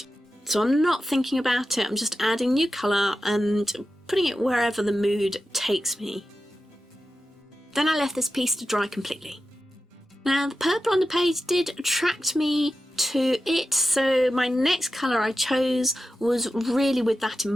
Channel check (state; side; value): normal; both; correlation 0.91